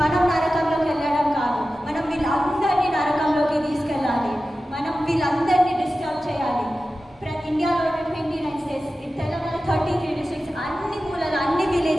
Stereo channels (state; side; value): normal; both; correlation 0.94